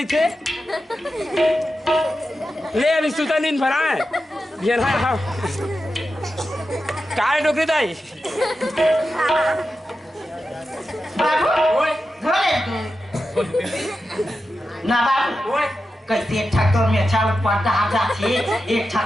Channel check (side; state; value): both; normal; correlation 0.91